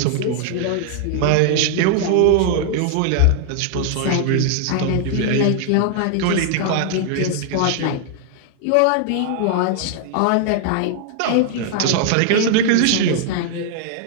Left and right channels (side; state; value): both; different; correlation 0.00